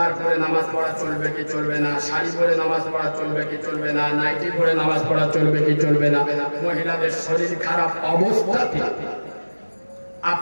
পরে নামাজ পড়া চলবে কি চলবে না, শাড়ি পরে নামাজ পড়া চলবে কি চলবে না, নাইটি পরে নামাজ পড়া চলবে কি চলবে না, মহিলাদের শরীর খারাপ অবস্থাতে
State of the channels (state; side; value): inverted; both; correlation -1.00